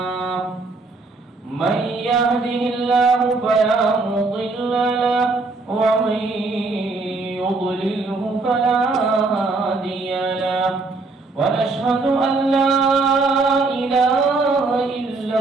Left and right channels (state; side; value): quieter; left; 3.6 dB